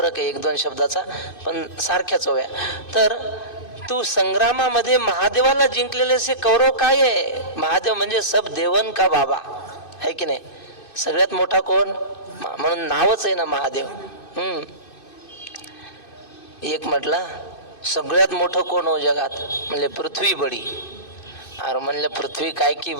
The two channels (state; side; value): late; right; 2.6 ms